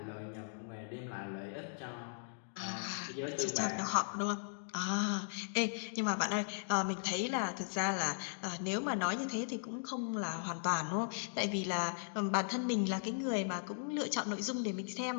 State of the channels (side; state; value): right; silent; digital silence